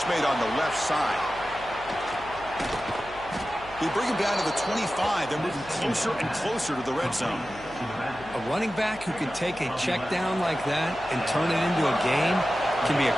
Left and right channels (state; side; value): noise; left; hum, 19 dB below the sound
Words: made on the left side. They bring him down to the 25. They're moving closer and closer to the red zone. A running back who can take a check down like that and turn it into a gain can be a